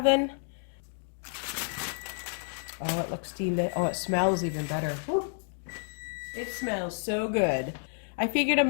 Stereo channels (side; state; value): right; silent; 58 dB below the other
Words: Oh, it looks steamed. Oh, it smells even better. Woo. It smells so good. I figured I'm